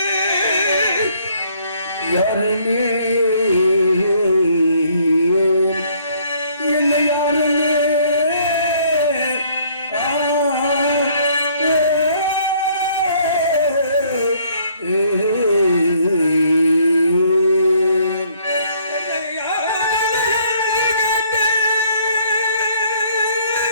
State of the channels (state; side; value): inverted; both; correlation -0.63